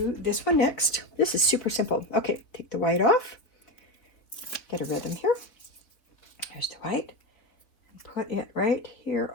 this one next. This is super simple. Okay, take the white off. Get a rhythm here. Here's the white. Put it right here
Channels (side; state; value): right; late; 3.6 ms